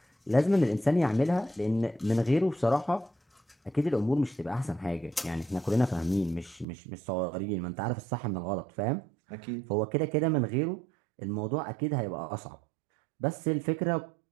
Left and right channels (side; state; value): left; drops out; at 6.7 s